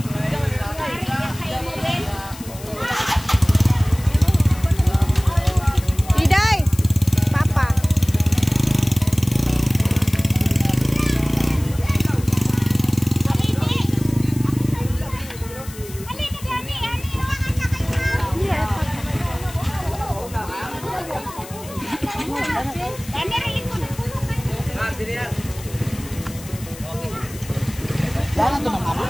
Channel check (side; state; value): left; noise; hiss, 16 dB below the sound